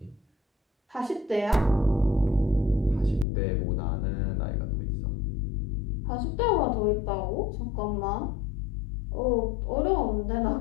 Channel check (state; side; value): drops out; right; at 3.2 s